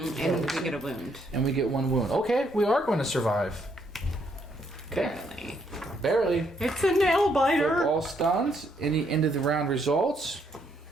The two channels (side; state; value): both; normal; correlation 0.72